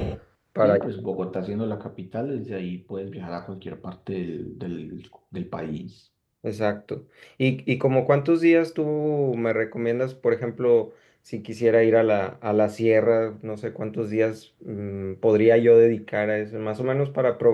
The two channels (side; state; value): both; identical; correlation 1.00